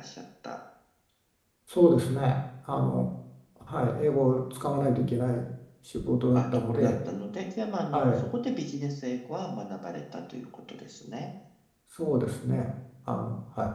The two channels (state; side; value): identical; both; correlation 1.00